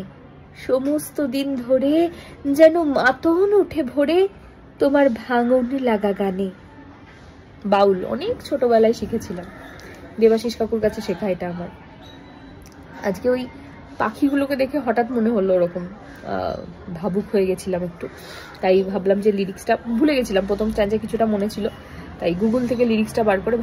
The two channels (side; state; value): both; identical; correlation 1.00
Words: সমস্ত দিন ধরে যেন মাতন উঠে ভরে তোমার ভাঙন লাগা গানে। বাউল অনেক ছোটবেলায় শিখেছিলাম, দেবাশিস কাকুর কাছে শেখা এটা আমার। আজকে ওই পাখিগুলোকে দেখে হঠাৎ মনে হলো ওরকম ভাবুক হয়ে গেছিলাম একটু, তাই ভাবলাম যে লিরিক্সটা ভুলে গেছিলাম, প্রথম স্ট্যান্ডে কিছুটা মনে ছিল, তাই গুগল থেকে লিরিক্সটা বার করে